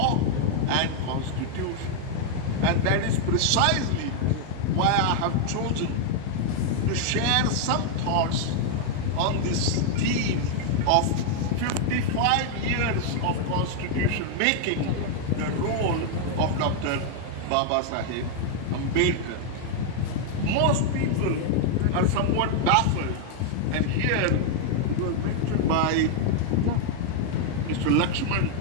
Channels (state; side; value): different; both; correlation 0.00